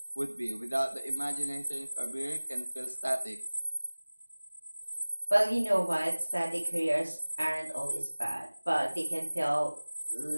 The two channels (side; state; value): both; inverted; correlation -1.00